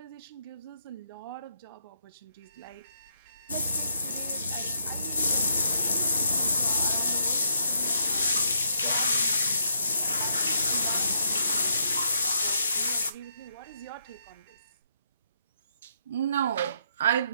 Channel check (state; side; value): inverted; both; correlation -0.74